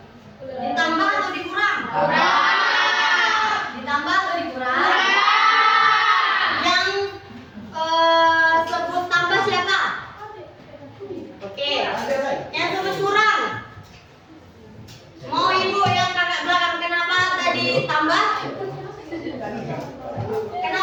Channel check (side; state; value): both; identical; correlation 1.00